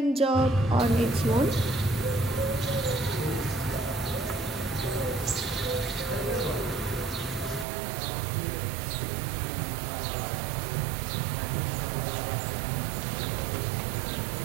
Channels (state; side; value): drops out; left; at 7.7 s